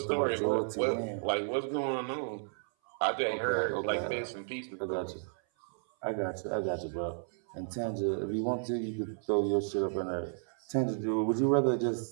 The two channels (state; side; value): silent; left; 56 dB below the other